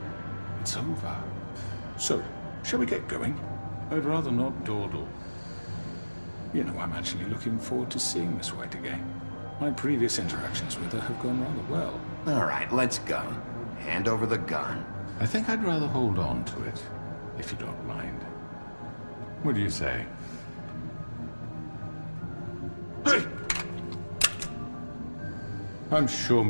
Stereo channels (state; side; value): inverted; both; correlation -1.00